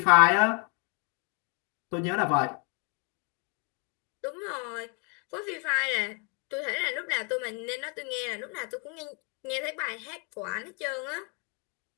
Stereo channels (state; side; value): quieter; right; 35.4 dB